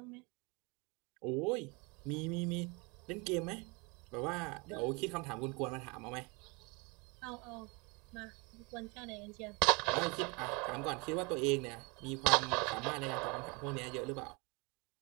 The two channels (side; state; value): left; quieter; 29.1 dB